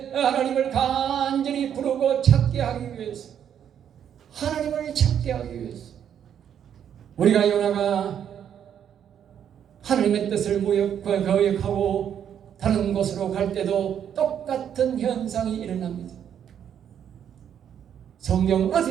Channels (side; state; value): left; quieter; 9.0 dB